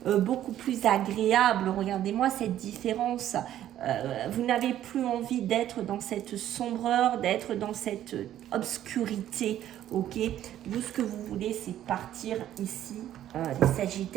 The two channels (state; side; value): quieter; left; 12.0 dB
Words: beaucoup plus agréable. Regardez-moi cette différence. Vous n'avez plus envie d'être dans cette sombreur, d'être dans cette obscurité. Ok, vous, ce que vous voulez, c'est partir ici, les